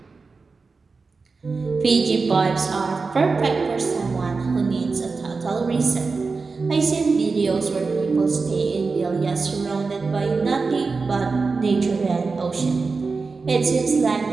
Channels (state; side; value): quieter; left; 4.3 dB